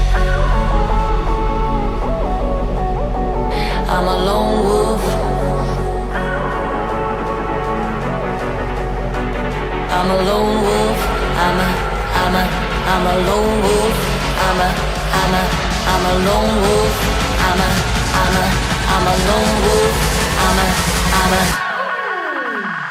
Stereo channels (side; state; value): both; identical; correlation 1.00